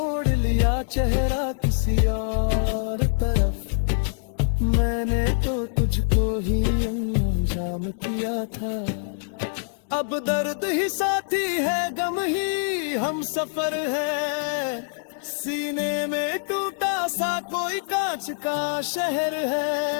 लिया चेहरा किसी और तरफ, मैंने तो तुझको ही अंजाम किया था। अब दर्द ही साथी है, गम ही हम सफर है। सीने में टूटा सा कोई कांच का शहर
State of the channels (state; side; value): silent; right; digital silence